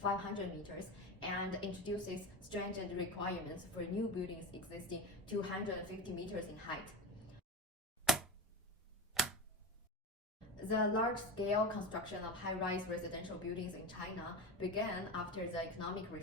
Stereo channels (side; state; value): both; normal; correlation 0.22